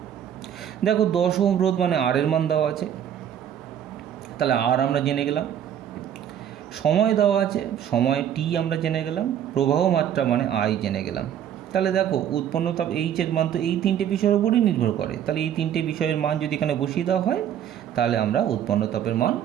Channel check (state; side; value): quieter; left; 9.8 dB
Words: দেখো 10 ওহম রোধ মানে আর এর মান দেওয়া আছে, তাহলে আর আমরা জেনে গেলাম। সময় দেওয়া আছে, সময় টি আমরা জেনে গেলাম। প্রবাহ মাত্রা মানে আই জেনে গেলাম। তাহলে দেখো উৎপন্ন তাপ এইচের মান তো এই তিনটে বিষয়ের উপরই নির্ভর করে। তাহলে এই তিনটে বিষয়ের মান যদি এখানে বসিয়ে দেওয়া হয় তাহলে আমরা উৎপন্ন তাপের মান